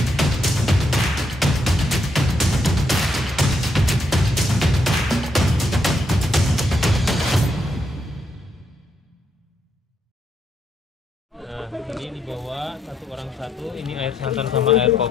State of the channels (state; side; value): normal; both; correlation 0.77